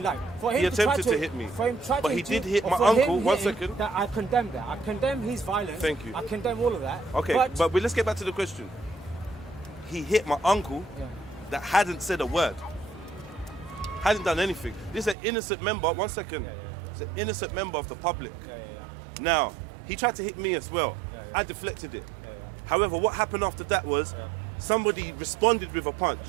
light. For him he attempted to hit me. For him to but he did hit my uncle. 1 second. That I condemn that. I condemn his violence. Thank you. I condemn all of that. Okay, but let's get back to the question. He hit my uncle that hadn't said a word. Hadn't done anything. This is an innocent member. 1 second. It's an innocent member of the public. Now, he tried to hit me as well. I deflected it. However, what happened after that was somebody responded with a punch.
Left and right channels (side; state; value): left; drops out; at 15.2 s